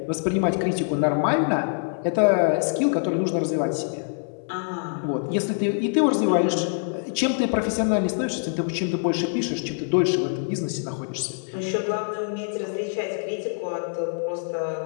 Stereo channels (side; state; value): right; silent; digital silence